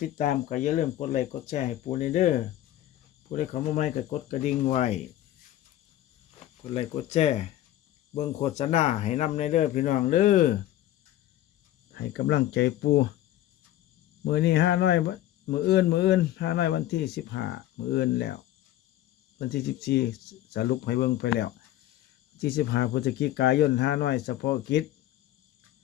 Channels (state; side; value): quieter; right; 13.6 dB